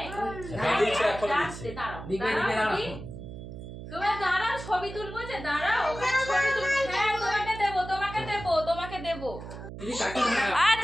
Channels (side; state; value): right; noise; hum, 11 dB below the sound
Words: তোমার দাঁড়াও, ছবি তুলবো যে দাঁড়াও, ওখানে ছবি তুলবো। হ্যাঁ তোমাকে দেবো, তোমাকে দেবো, তোমাকে দেবো।